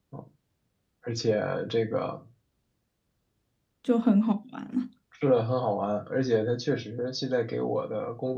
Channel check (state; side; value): identical; both; correlation 1.00